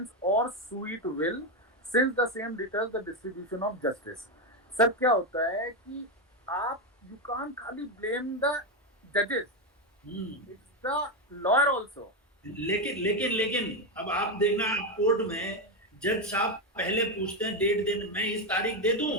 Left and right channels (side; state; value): both; normal; correlation 0.08